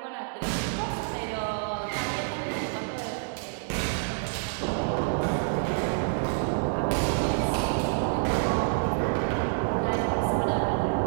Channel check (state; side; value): silent; left; 59 dB below the other